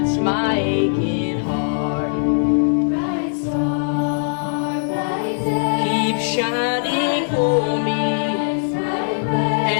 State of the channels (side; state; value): right; silent; 56 dB below the other